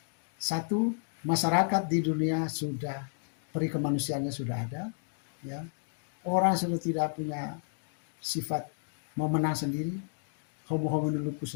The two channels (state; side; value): silent; right; digital silence